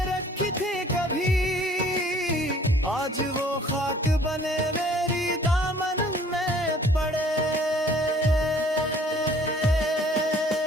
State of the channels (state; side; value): normal; both; correlation 0.55